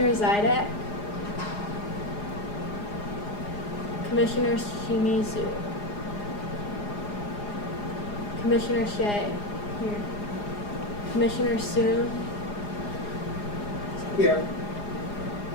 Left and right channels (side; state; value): right; late; 4.9 ms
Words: Zidek. Commissioner Shimizu. Commissioner Shea. Here. Commissioner Soon. Here.